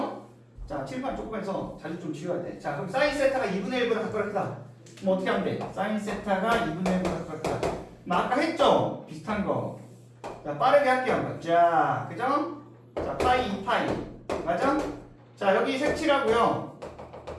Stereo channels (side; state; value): both; identical; correlation 1.00